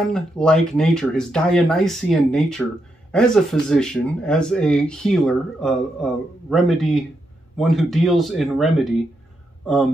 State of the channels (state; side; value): normal; both; correlation 0.82